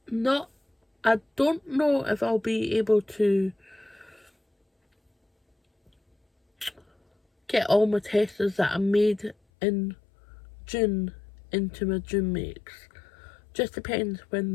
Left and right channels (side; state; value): right; drops out; at 9.3 s